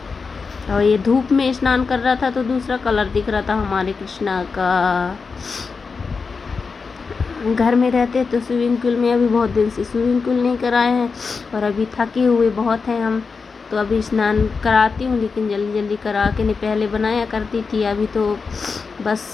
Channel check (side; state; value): right; quieter; 4.9 dB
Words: और ये धूप में स्नान कर रहा था तो दूसरा कलर दिख रहा था हमारे कृष्णा का। घर में रहते तो स्विमिंग पूल में, अभी बहुत दिन से स्विमिंग पूल नहीं कराए हैं, और अभी थके हुए बहुत हैं हम, तो अभी स्नान कराती हूँ, लेकिन जल्दी जल्दी करा के नहीं, पहले बनाया करती थी। अभी तो बस